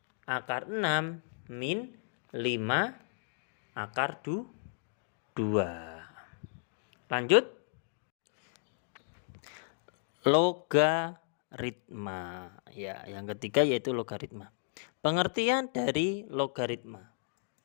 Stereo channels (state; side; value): silent; right; digital silence